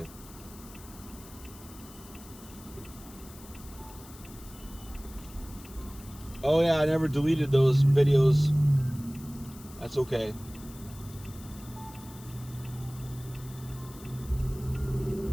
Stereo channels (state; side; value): noise; left; hiss, 19 dB below the sound